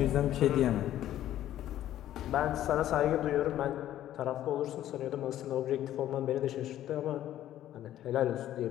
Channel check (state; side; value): quieter; right; 12.5 dB